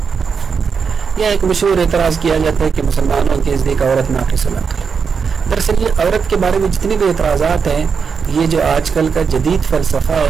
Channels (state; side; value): quieter; left; 5.9 dB